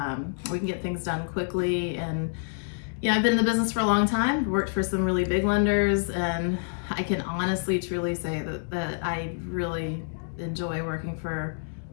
We can get things done quickly. And yeah, I've been in the business for a long time, worked for some really big lenders, and I can honestly, truly say that I really enjoy working for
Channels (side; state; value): right; silent; digital silence